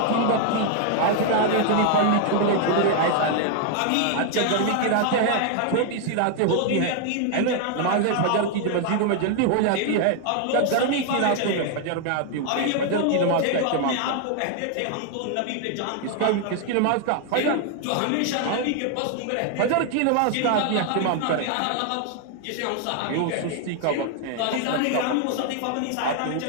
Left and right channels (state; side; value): different; both; correlation 0.00